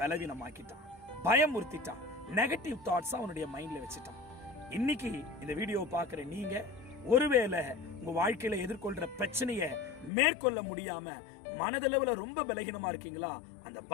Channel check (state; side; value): drops out; right; at 10.1 s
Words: பயமுறுத்திட்டான், நெகட்டிவ் தாட்ஸ் அவனுடைய மைண்ட்ல வச்சுட்டான். இன்னைக்கு இந்த வீடியோ பாக்குற நீங்க ஒருவேளை உங்க வாழ்க்கையில எதிர்கொள்ற பிரச்சனையை மேற்கொள்ள முடியாம மனதளவுல ரொம்ப பலகீனமா இருக்கீங்களா, அந்த